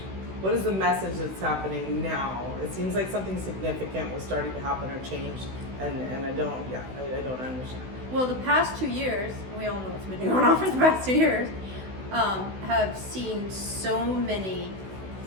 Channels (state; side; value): late; left; 16 ms